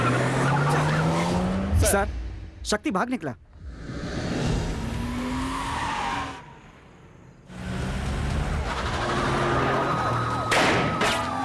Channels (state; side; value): identical; both; correlation 1.00